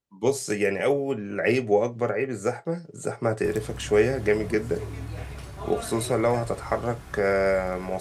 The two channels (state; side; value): identical; both; correlation 1.00